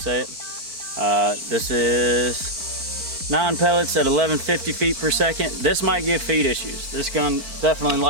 it. This is 9 pellets at 1150 feet per second. This might give feed issues. This gun definitely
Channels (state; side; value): late; left; 4.4 ms